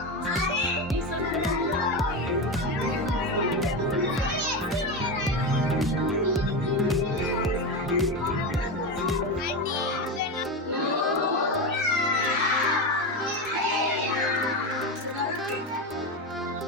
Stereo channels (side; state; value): both; normal; correlation 0.17